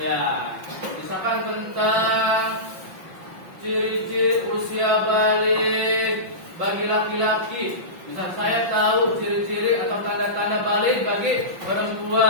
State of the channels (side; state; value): left; late; 5.7 ms